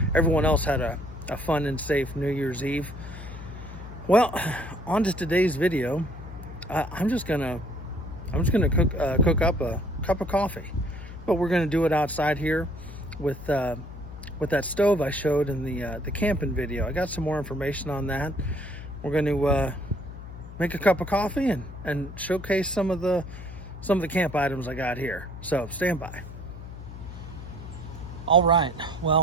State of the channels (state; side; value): noise; left; hum, 12 dB below the sound